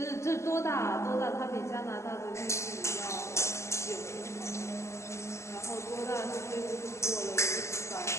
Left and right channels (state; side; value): late; right; 0.14 ms